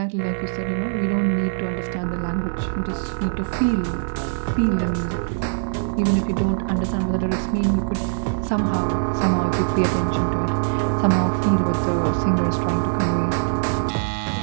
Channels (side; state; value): left; silent; digital silence